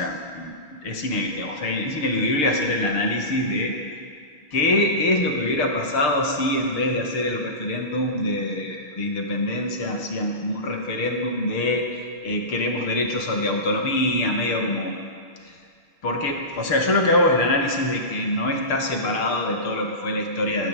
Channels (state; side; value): late; right; 6.6 ms